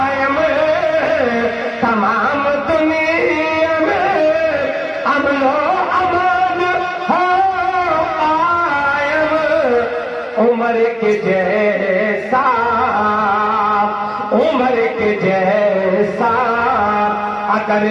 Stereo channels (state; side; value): identical; both; correlation 1.00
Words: तमाम दुनिया में अमनो अमान हो कायम, उम्र के जैसा, उम्र के जैसा अगर